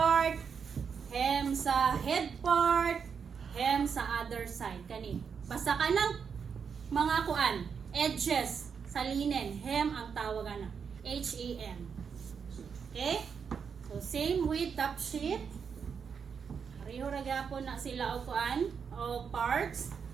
hem sa head part, hem sa other side. Kani. Basta kanang mga kuan, edges sa linen, hem ang tawag ana. H-E-M. Okay? So same with top sheet. Pareho ra gyapon na sila og kuan o parts.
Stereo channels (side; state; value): left; quieter; 6.4 dB